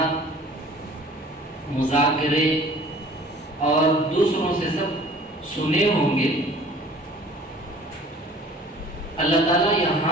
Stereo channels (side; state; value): both; normal; correlation 0.49